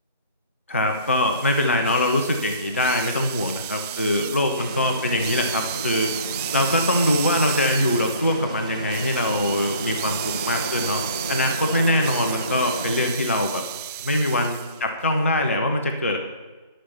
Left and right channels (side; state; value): both; inverted; correlation -0.49